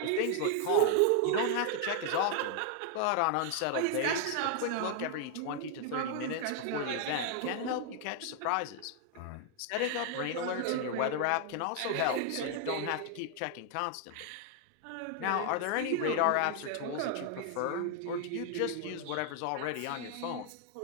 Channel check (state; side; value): different; both; correlation 0.00